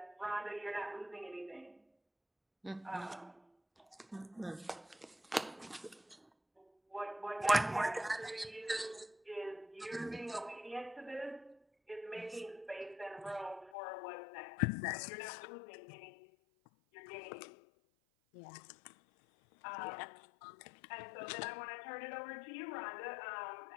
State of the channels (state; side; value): drops out; right; at 13.7 s